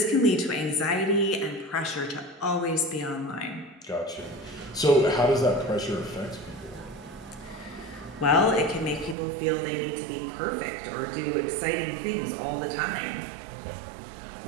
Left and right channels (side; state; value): left; drops out; at 9.2 s